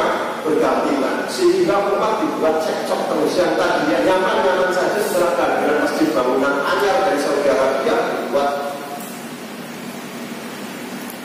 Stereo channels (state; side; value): identical; both; correlation 1.00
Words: berdampingan, sehingga umat dibuat cekcok terus. Yang tadinya nyaman-nyaman saja setelah kehadiran masjid bangunan anyar dari Saudi Arabia dibuat.